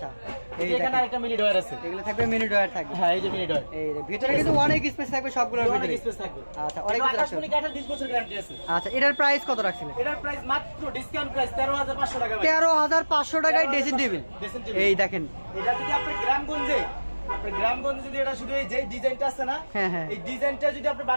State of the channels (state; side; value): inverted; both; correlation -1.00